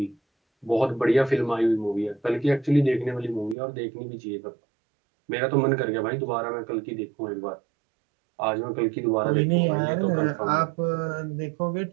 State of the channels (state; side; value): drops out; left; at 3.6 s